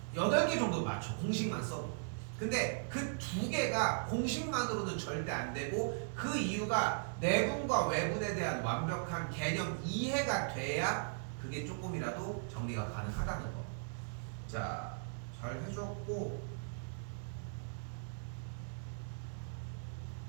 8개 정도 맞춰. 공식만 써도. 근데 그 2개가 공식만으로는 절대 안 되고, 그 이유가 내분과 외분에 대한 완벽한 개념 이해가 돼야 그게 조금이라도 정리가 가능하다는 거. 자, 잘 해줬고,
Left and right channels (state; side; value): silent; left; digital silence